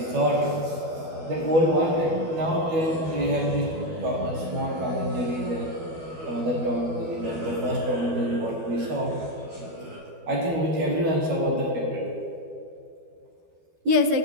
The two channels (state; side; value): late; left; 12 ms